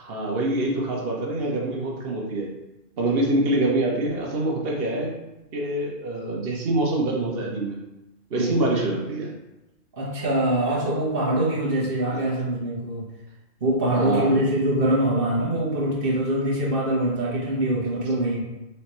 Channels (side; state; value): left; late; 2.6 ms